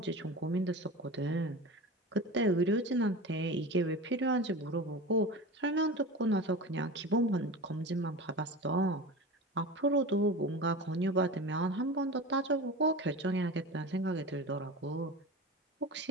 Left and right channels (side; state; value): both; normal; correlation 0.30